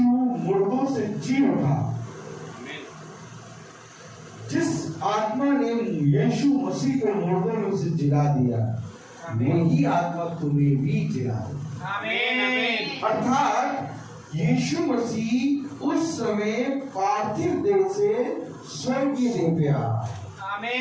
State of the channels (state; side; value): identical; both; correlation 1.00